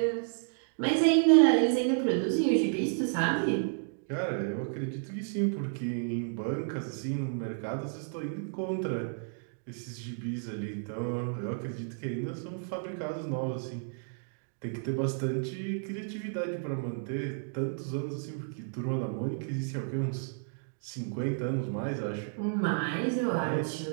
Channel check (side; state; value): left; silent; digital silence